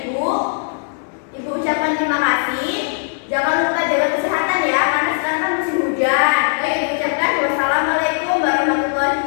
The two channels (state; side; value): silent; right; 67 dB below the other